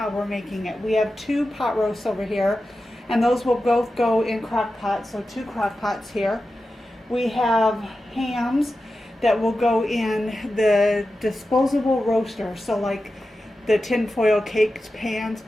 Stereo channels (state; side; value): normal; both; correlation 0.92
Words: we're making it. We have 2 pot roasts over here, and those will both go in crock pots, so 2 crock pots here. We have hams that will go in the disposable roaster, so like the tinfoil caked pans,